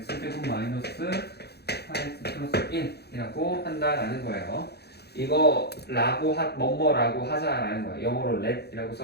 마이너스 4x 플러스 1이라고 한다라는 거예요. 이거 라고 뭐뭐라고 하자라는 거예요. 영어로 let이라고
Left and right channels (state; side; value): late; right; 0.48 ms